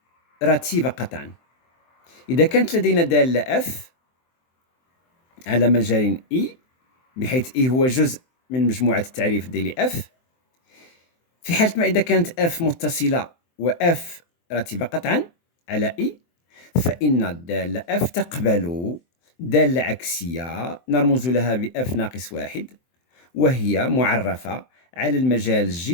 قطعا. إذا كانت لدينا دالة f على مجال e بحيث e هو جزء من مجموعة التعريف ديال f، في حالة ما إذا كانت f متصلة و f رتيبة قطعا على e، فإن الدالة f تقبل دالة عكسية نرمز لها ب f ناقص 1، وهي معرفة على المجال G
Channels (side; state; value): right; late; 23 ms